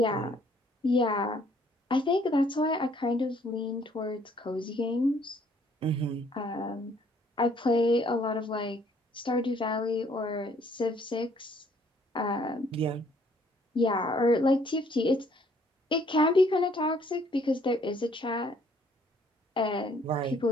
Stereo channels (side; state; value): both; normal; correlation 0.63